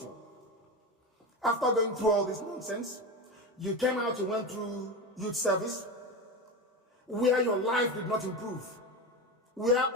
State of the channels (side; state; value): both; normal; correlation 0.21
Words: After going through all this nonsense, you came out, you went through youth service, where your life did not improve, where